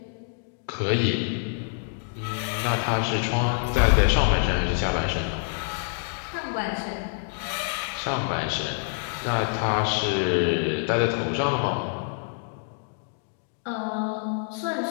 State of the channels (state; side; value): silent; right; 61 dB below the other